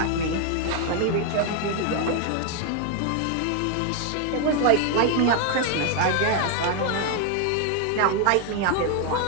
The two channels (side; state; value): both; different; correlation 0.01